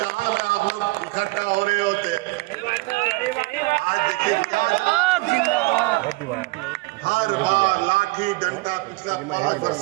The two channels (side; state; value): left; quieter; 23.2 dB